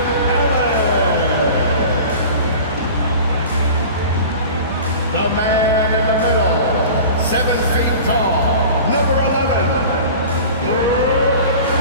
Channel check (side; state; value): both; inverted; correlation -0.39